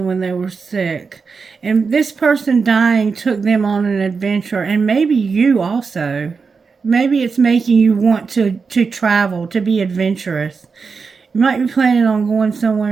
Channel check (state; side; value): quieter; left; 5.1 dB